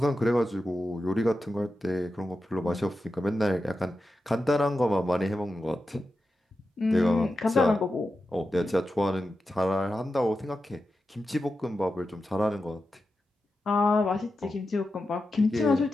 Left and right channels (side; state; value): both; normal; correlation 0.91